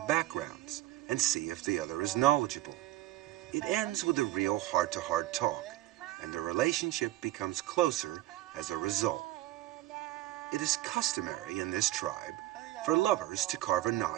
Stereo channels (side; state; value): left; quieter; 16.0 dB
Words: backgrounds and see if the other is knowledgeable. It ends with a real heart-to-heart talk, and the relationship becomes closer as a result. It is customary in this tribe for lovers to carve a